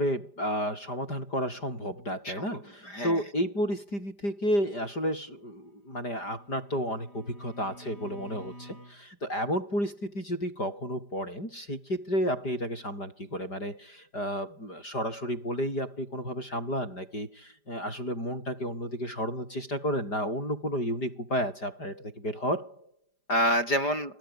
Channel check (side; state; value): right; late; 5.0 ms